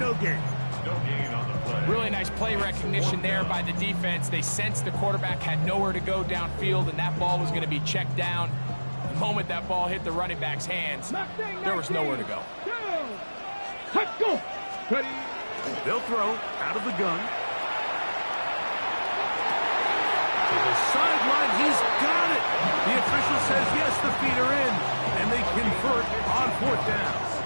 gain. No gain on the play. Really nice play recognition there by the defense. They sensed the quarterback had nowhere to go downfield, and that ball was going to be checked down. The moment that ball hit the running back's hands, there was nowhere to go. Let's go! Ready? They'll throw out of the gun. To the sideline, he's got it. The official says yes, the feet are in, and they convert on fourth down.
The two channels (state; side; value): inverted; both; correlation -1.00